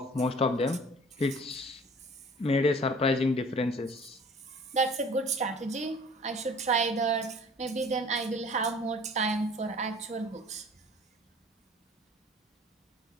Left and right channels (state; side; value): normal; both; correlation 0.48